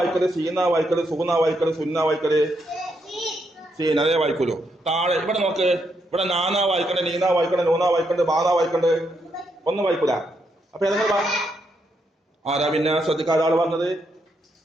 സീന വായിക്കല്, സൂന വായിക്കല്, സുന്ന വായിക്കല്, സീന അതേ വായിക്കൂലോ. താഴെ ഇവിടെ നോക്ക്. ഇവിടെ നാന വായിക്കണ്ട്, നീന വായിക്കണ്ട്, നൂന വായിക്കണ്ട്, ബാധ വായിക്കണ്ട്. ഒന്നും വായിക്കൂല. അപ്പൊ ഏതെങ്കിലും ആരാ പിന്നെ ശ്രദ്ധിക്കാതെ ആള് പറഞ്ഞത്?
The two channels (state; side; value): normal; both; correlation 0.78